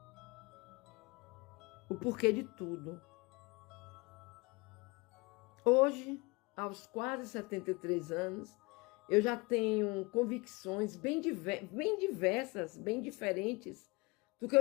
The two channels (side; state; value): right; quieter; 26.2 dB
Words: o porquê de tudo. Hoje, aos quase 73 anos, eu já tenho convicções bem diversas, bem diferentes do que